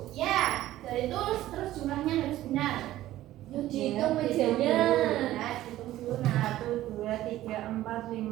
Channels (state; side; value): quieter; left; 14.6 dB